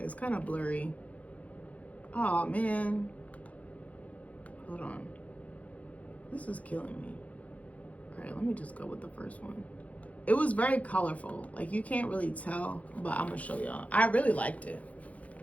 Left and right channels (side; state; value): right; late; 0.068 ms